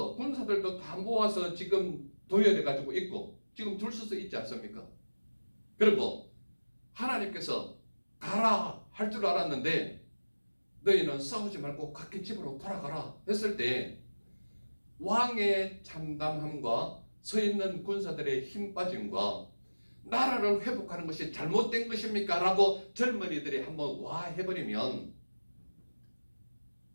군사들도 다 모아서 지금 도열해 가지고 있고 지금 줄 서서 있지 않습니까? 그리고 하나님께서 가라 할 줄 알았는데 너희는 싸우지 말고 각기 집으로 돌아가라 했을 때 왕의 참담함과 서 있는 군사들의 힘 빠짐과 나라를 회복하는 것이 잘못된 것입니까? 라고 젊은이들이 한번 와 해버리면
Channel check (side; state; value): both; inverted; correlation -1.00